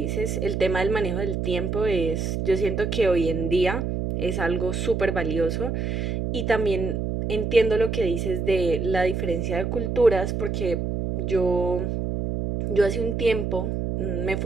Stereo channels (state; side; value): noise; right; hum, 1 dB below the sound